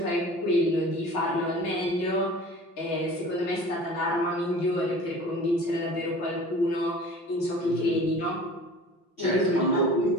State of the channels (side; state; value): right; late; 5.7 ms